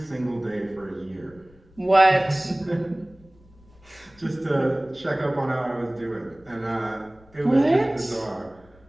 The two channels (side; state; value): left; noise; rumble, 27 dB below the sound